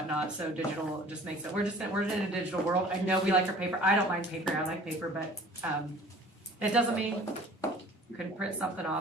So digital just makes it, we're in a digital world. I know we like our paper. I don't mind paper. I like paper, but it doesn't mean you couldn't print something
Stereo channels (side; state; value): both; normal; correlation 0.48